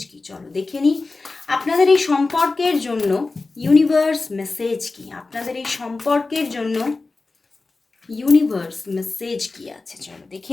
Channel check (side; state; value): right; quieter; 3.6 dB